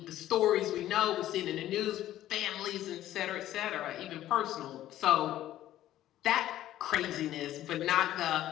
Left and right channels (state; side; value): quieter; right; 13.3 dB